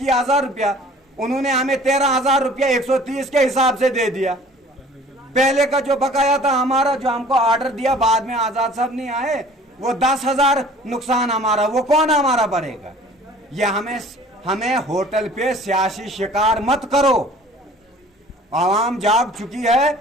रुपया। उन्होंने हमें 13,000 रुपया 130 के हिसाब से दे दिया। पहले का जो बकाया था हमारा, जो हमको ऑर्डर दिया बाद में आजाद साहब नहीं आए, वो 10,000 नुकसान हमारा, वो कौन हमारा भरेगा? ये हमें होटल पे सियासी शिकार मत करो। आवाम जाग चुकी है,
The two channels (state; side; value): normal; both; correlation 0.49